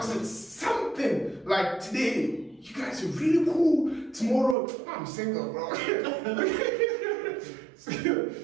it's something like today, you guys are really cool. Tomorrow, I'm single, bro.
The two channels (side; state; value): left; drops out; at 4.5 s